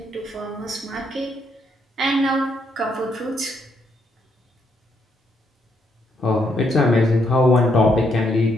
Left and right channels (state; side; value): normal; both; correlation 0.75